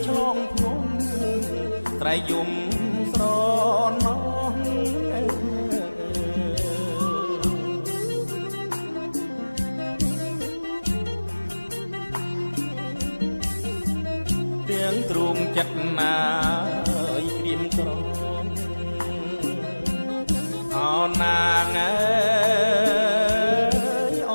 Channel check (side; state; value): both; inverted; correlation -1.00